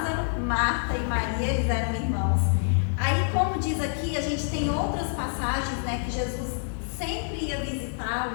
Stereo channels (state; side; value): silent; right; digital silence